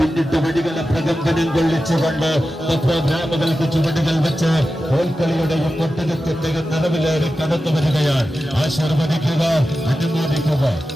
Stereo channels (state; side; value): normal; both; correlation 0.92